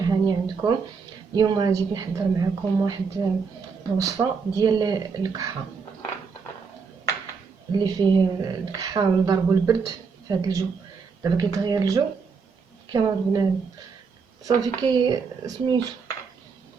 هاني عندكم. اليوم جيت نحضر معكم واحد الوصفه ديال الكحه اللي فيه الكحه ونضربو البرد في هذا الجو. دابا كيتغير الجو كما بنادم صافي كي سميتو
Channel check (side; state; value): left; quieter; 5.3 dB